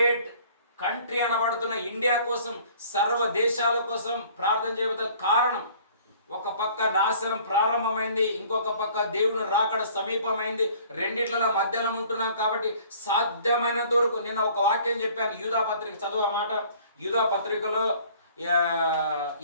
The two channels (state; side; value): inverted; both; correlation -0.53